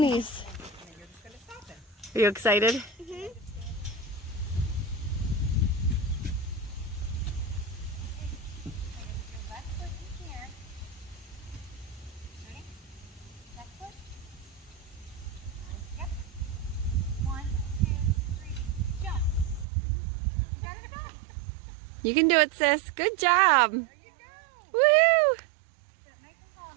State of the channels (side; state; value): left; drops out; at 19.7 s